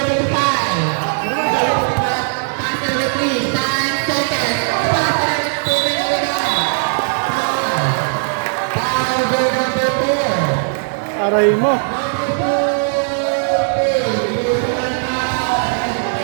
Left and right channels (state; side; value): silent; left; 61 dB below the other